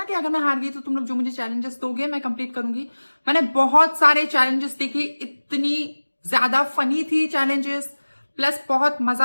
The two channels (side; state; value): both; inverted; correlation -1.00